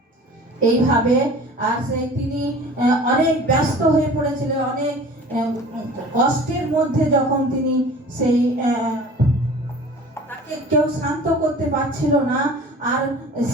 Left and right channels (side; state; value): both; normal; correlation 0.43